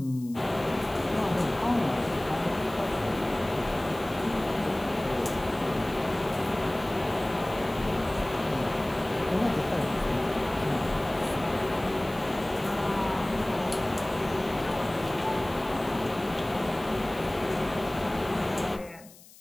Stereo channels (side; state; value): left; noise; hiss, 22 dB below the sound